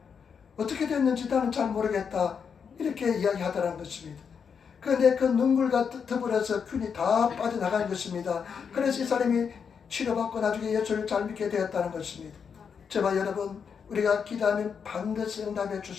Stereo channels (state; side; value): quieter; right; 6.6 dB